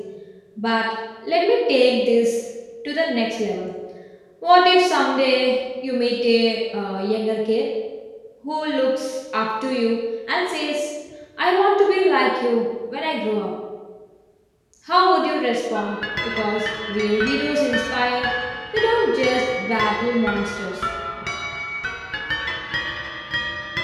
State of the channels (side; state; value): both; identical; correlation 1.00